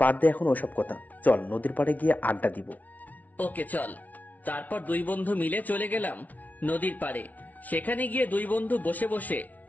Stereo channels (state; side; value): late; right; 0.074 ms